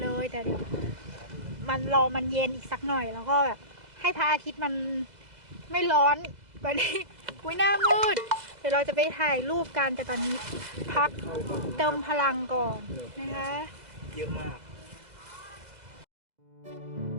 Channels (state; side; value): late; left; 2.0 ms